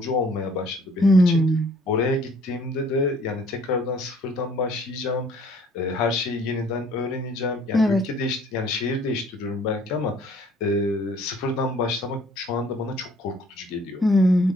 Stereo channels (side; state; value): both; normal; correlation 0.58